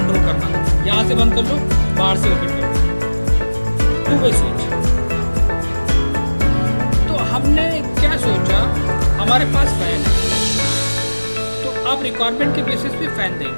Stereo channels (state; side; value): inverted; both; correlation -1.00